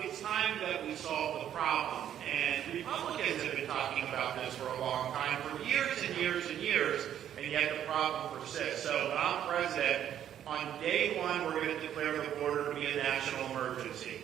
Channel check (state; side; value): quieter; left; 10.3 dB